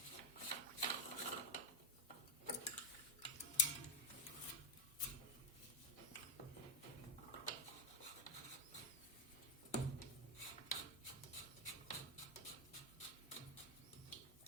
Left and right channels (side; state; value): both; normal; correlation 0.02